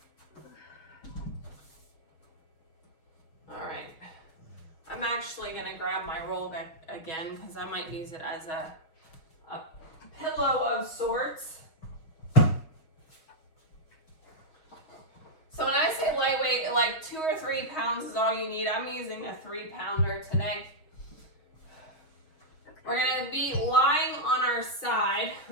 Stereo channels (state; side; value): late; right; 6.4 ms